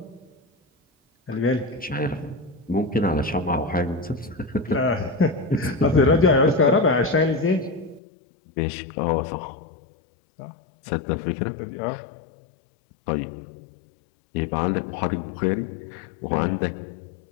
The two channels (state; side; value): drops out; right; at 8.0 s